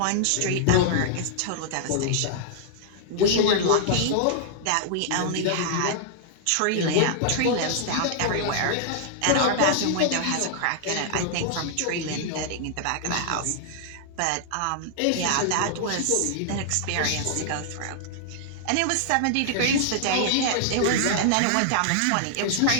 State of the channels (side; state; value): both; different; correlation -0.01